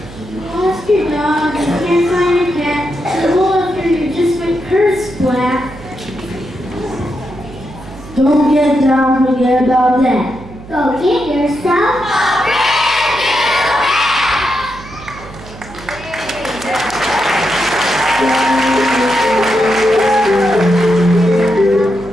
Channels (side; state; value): right; noise; hum, 17 dB below the sound